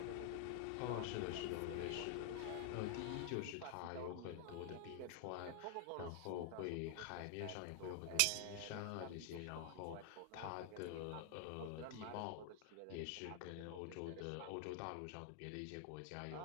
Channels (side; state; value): both; different; correlation 0.00